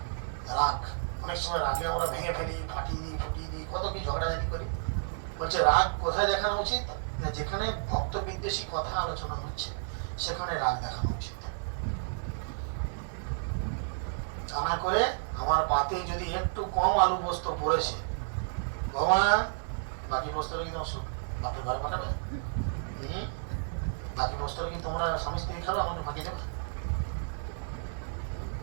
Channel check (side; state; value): left; silent; 57 dB below the other